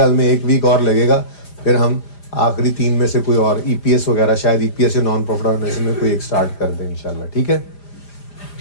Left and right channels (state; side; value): late; right; 5.0 ms